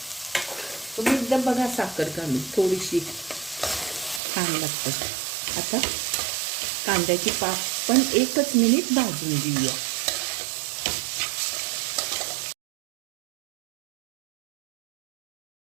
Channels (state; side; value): drops out; left; at 4.2 s